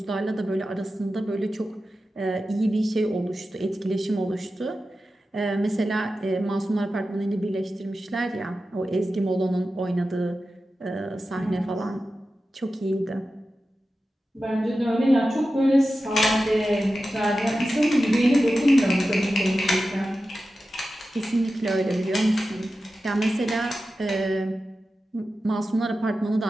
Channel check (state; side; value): normal; both; correlation 0.93